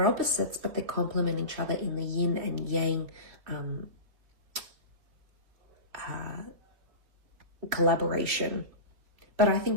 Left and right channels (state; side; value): late; left; 3.6 ms